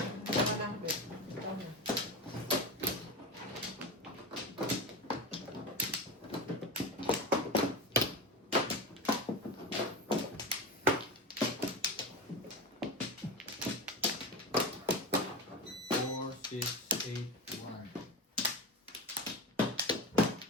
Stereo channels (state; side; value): normal; both; correlation 0.23